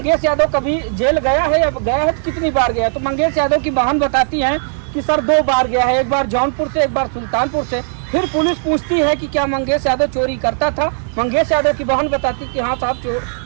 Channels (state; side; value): silent; left; digital silence